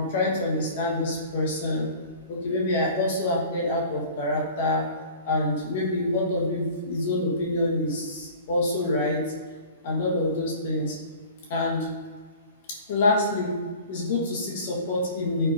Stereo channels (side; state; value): both; inverted; correlation -0.44